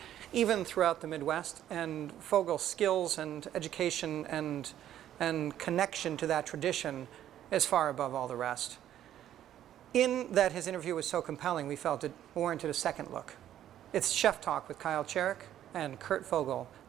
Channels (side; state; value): left; quieter; 11.5 dB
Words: even throughout the Midwest, and Fogle's skills and education and connection to that tradition is far above all the rest. In that his interview was so compelling, we felt it warranted a second look. It's Chef Talk with Kyle Cherek and Kurt Fogle,